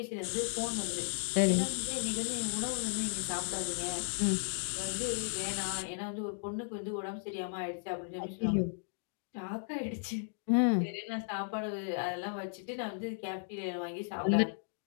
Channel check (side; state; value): right; silent; digital silence